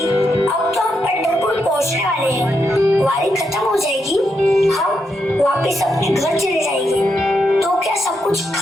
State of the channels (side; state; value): both; normal; correlation 0.82